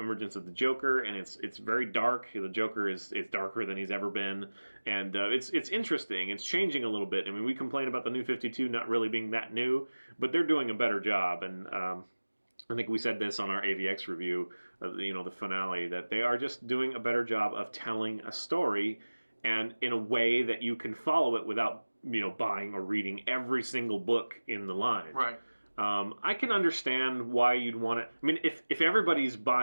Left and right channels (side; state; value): both; inverted; correlation -1.00